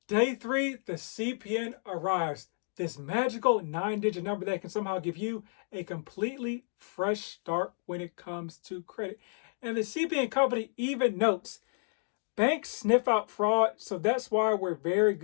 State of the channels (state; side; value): silent; right; digital silence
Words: Day 3, the CPN arrives. This magical 9-digit number that can somehow give you a completely fresh start when it comes to credit. And the CPN company even notes, banks sniff out fraud, so that's why we're very